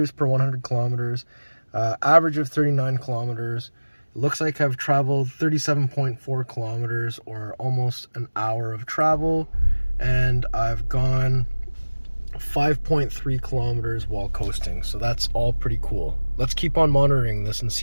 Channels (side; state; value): both; inverted; correlation -1.00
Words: per 100 kilometers, average of 39 kilometers. Looks like I've traveled 37.4 kilometers, or almost an hour of travel, and I've gone 5.3 kilometers while coasting. So that's all pretty cool. Let's keep on monitoring this and